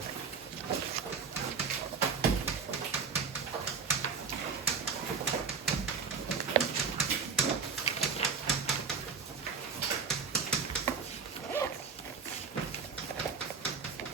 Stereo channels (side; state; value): left; quieter; 5.5 dB